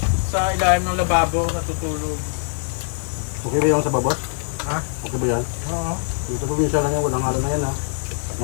sa ilalim ng lababo, natutulog. Okay ba yung sa babot? Ha? Okay ba yan? Oo. Dito probinsya lang yan. Walang halo na yan ha.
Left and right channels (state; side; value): silent; right; digital silence